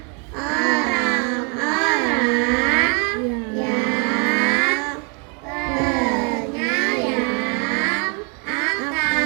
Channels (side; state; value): left; quieter; 35.7 dB